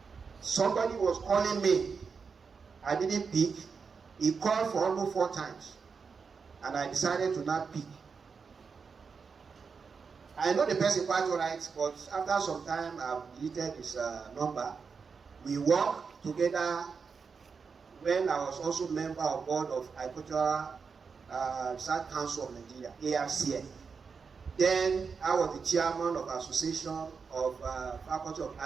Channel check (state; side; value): quieter; left; 5.4 dB